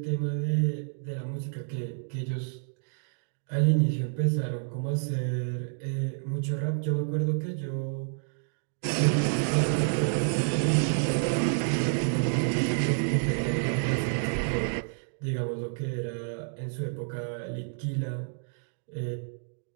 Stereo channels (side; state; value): left; silent; digital silence